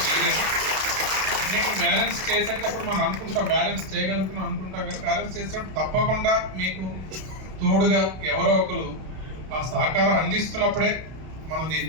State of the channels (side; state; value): left; late; 32 ms